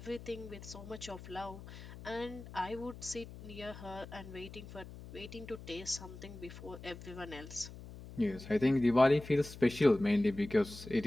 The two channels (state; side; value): noise; left; hum, 14 dB below the sound